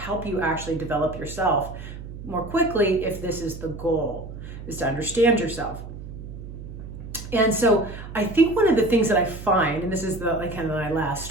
you actually develop yourself more quickly, if this is the goal, is to understand yourself. And so I think one of the things that I find, and this is my last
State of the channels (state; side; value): noise; right; hum, 11 dB below the sound